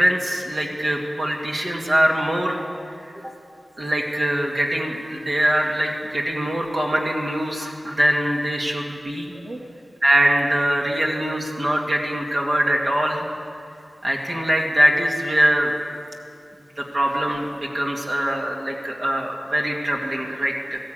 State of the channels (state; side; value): normal; both; correlation 0.97